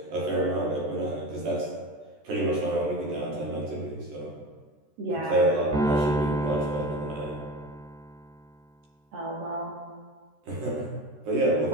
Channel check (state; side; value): late; left; 13 ms